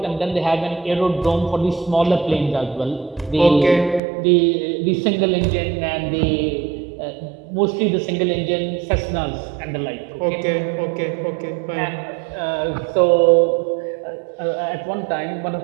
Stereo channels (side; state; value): left; drops out; at 4.0 s